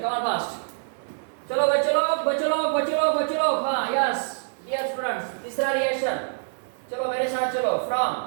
कम ऑन फास्ट। चलो बच्चों लोग, हाँ यस डियर स्टूडेंट्स, तीसरा रिएक्शन। चलो मेरे साथ चलो,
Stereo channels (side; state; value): left; silent; digital silence